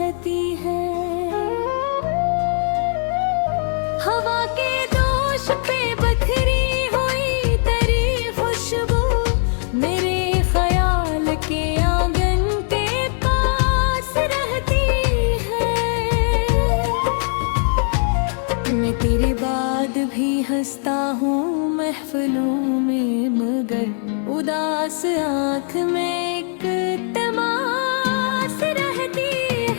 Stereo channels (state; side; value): silent; right; 57 dB below the other